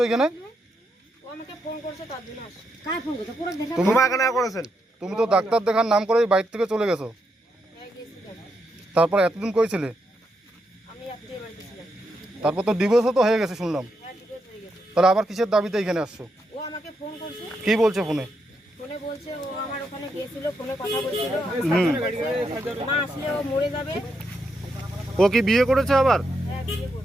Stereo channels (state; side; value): normal; both; correlation 0.81